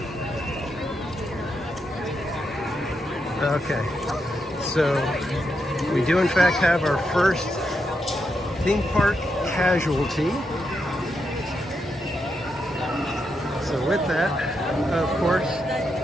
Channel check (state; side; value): normal; both; correlation 0.83